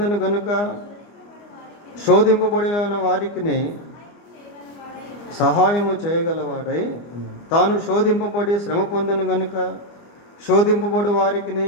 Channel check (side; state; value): right; late; 24 ms